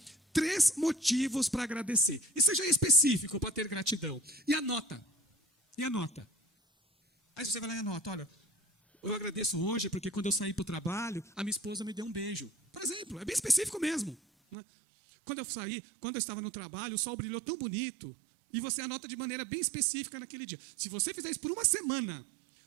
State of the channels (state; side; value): drops out; left; at 14.6 s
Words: 3 motivos para agradecer. E seja específico para ter gratidão. E anota. Aí você vai lá e anota, olha, eu agradeço hoje porque quando eu saí para o trabalho, a minha esposa me deu um beijo. Por exemplo, é bem específico mesmo, né? Quando eu estava no trabalho, o sol brilhou tão bonito. E você anota de maneira bem específica naquele dia. Se você fizer isso por uma semana,